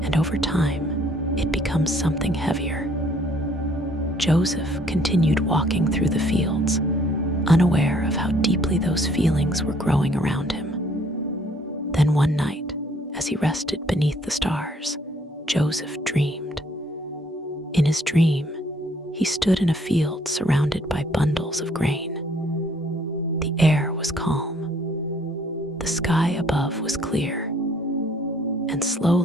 over time, it becomes something heavier. Joseph continued walking through the fields, unaware of how deeply those feelings were growing around him. Then one night, as he rested beneath the stars, Joseph dreamed. In his dream, he stood in a field surrounded by bundles of grain. The air was calm. The sky above was clear. And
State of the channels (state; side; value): normal; both; correlation 0.62